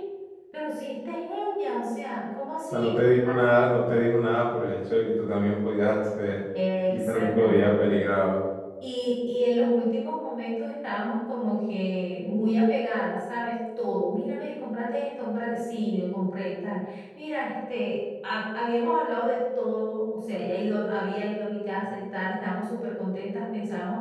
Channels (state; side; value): identical; both; correlation 1.00